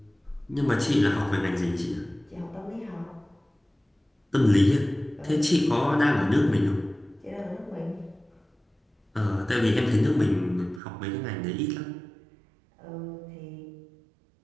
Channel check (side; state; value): left; drops out; at 10.8 s